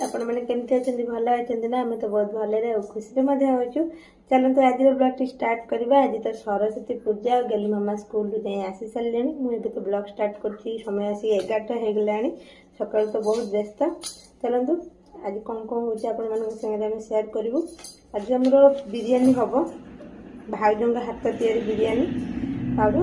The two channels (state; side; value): identical; both; correlation 1.00